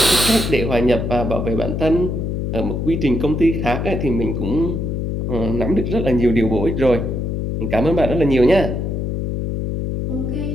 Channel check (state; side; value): noise; left; hum, 2 dB below the sound